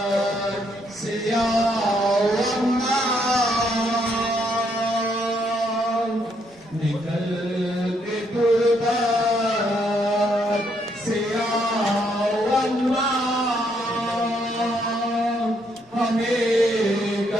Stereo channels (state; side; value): normal; both; correlation 0.73